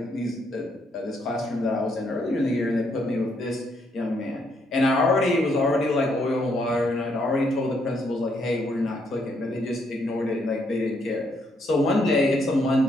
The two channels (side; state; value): both; normal; correlation 0.73